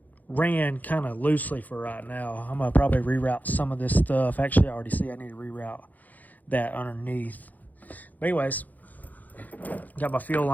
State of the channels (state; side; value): late; right; 0.081 ms